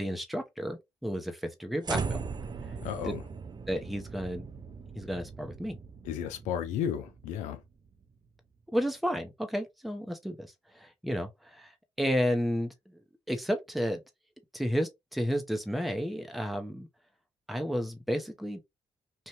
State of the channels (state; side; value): normal; both; correlation 0.85